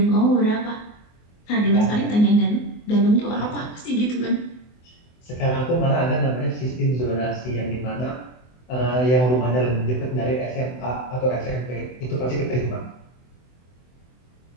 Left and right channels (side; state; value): right; late; 24 ms